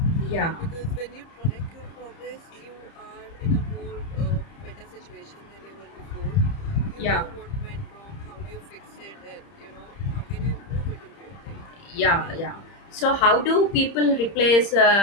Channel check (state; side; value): late; right; 30 ms